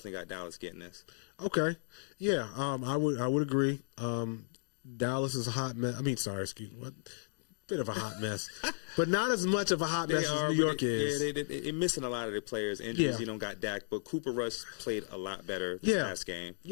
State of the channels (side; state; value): right; silent; digital silence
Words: got Dallas getting this. Okay. Yeah, I would agree. Dallas is a hot mess. Bit of a hot mess, but not as much of a hot mess as New York is. Yeah, they're missing a lot of their players. Injuries, you don't got Dak, but Cooper Rush played a lot better this last game.